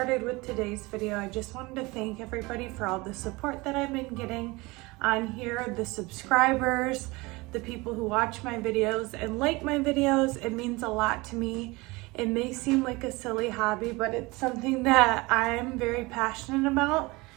with today's video, I just wanted to thank everybody for all the support that I've been getting on here, the subscribers, the people who watch my videos and like my videos. It means a lot to me. It may seem like a silly hobby, but it's something that I'm very passionate about.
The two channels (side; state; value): left; quieter; 23.5 dB